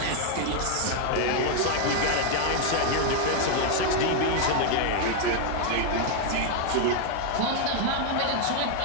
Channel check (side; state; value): both; different; correlation 0.00